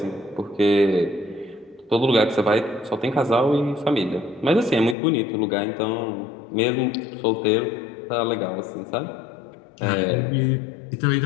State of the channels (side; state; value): right; drops out; at 5.0 s